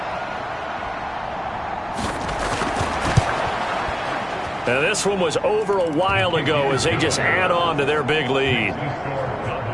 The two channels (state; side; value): identical; both; correlation 1.00